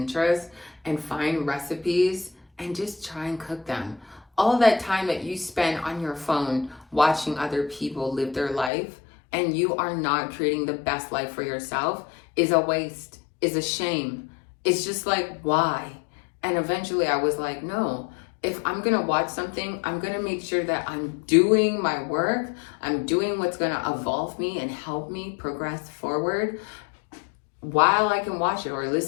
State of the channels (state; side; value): drops out; right; at 8.7 s